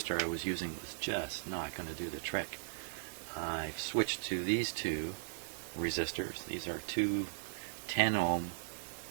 I was using was just not going to do the trick, I've switched to these two resistors. These are two 10 ohm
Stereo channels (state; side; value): silent; left; digital silence